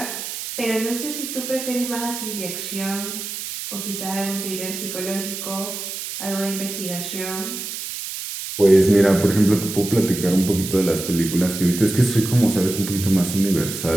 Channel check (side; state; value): right; noise; hiss, 7 dB below the sound